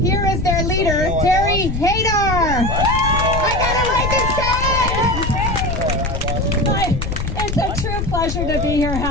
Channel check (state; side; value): noise; left; rumble, 4 dB below the sound